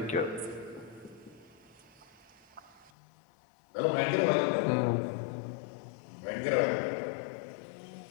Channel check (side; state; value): right; drops out; at 2.9 s